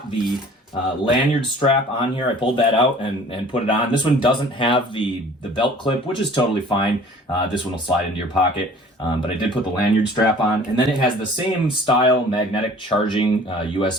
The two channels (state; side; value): normal; both; correlation 0.49